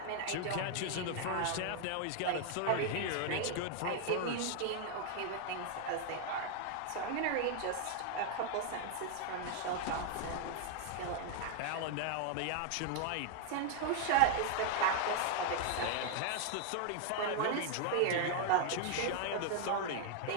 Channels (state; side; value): different; both; correlation 0.00